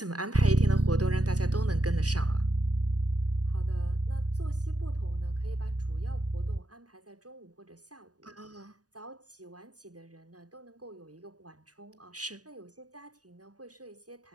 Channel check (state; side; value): late; left; 0.68 ms